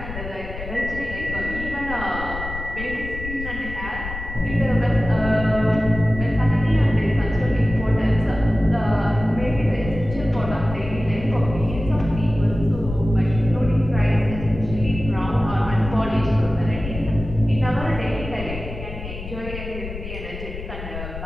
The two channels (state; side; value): noise; left; rumble, 9 dB below the sound